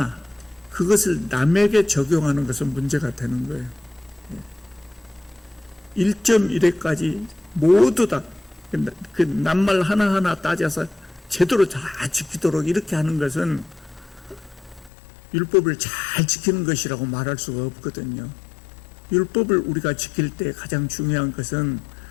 그것을 남에게 적용하는 것은 문제가 되는 거예요. 1.1회까지 모두 다 그 낱말 하나하나 따져서 제대로 다 지키도록 이렇게 하는 것은 율법을 잘 지키는 것이라고 말할 수가 없거든요. 율법을 우리가 지킬 때 가장 중요한 것은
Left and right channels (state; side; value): drops out; right; at 14.9 s